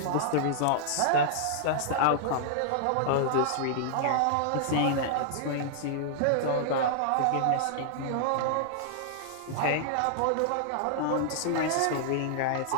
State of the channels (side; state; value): both; different; correlation -0.01